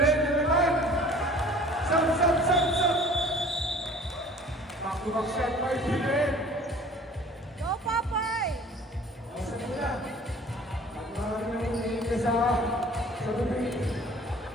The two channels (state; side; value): normal; both; correlation 0.48